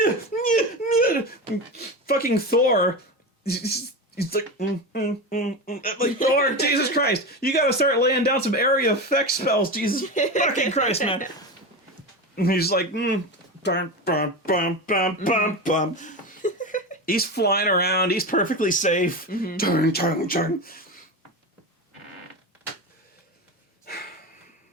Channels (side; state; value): both; normal; correlation 0.21